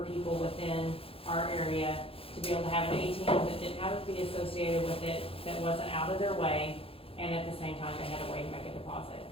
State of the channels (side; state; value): right; late; 0.27 ms